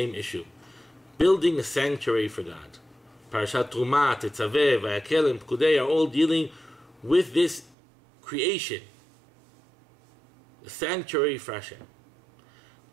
issue. Building a sanctuary for God. Parashat Truma, Tetzaveh, Vayakel, and Pikudei are all dealing with this creation. A sanctuary for Hashem.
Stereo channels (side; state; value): left; drops out; at 7.8 s